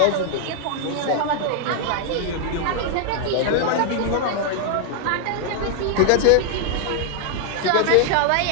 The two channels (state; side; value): different; both; correlation 0.00